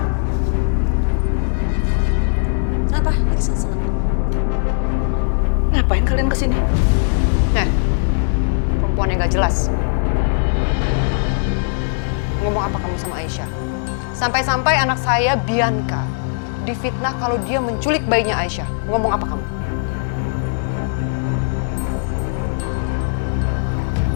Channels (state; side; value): silent; right; digital silence